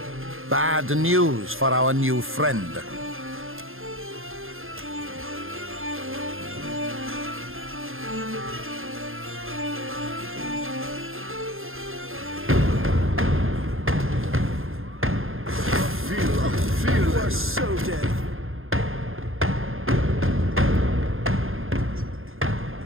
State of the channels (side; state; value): left; late; 0.60 ms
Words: Bad news for our new friend. You are so dead.